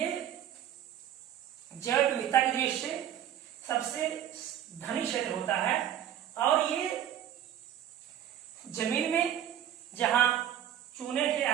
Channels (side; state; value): left; quieter; 10.7 dB